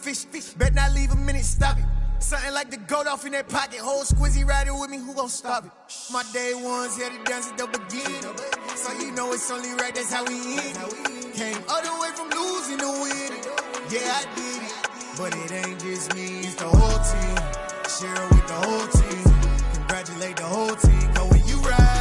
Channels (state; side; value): identical; both; correlation 1.00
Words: Bet not leave a minute, stop it. Something like the goat off in that pocket. Whole squizzy riding with me, who gon' stop it? My day ones here to dance at the beginning. So you know it's only right, that's how we end. Came all the way from losing to winning. Yeah, I did it, but it ain't just me, it's the whole team. Share it with the whole team. Congratulate the whole team. Cause when you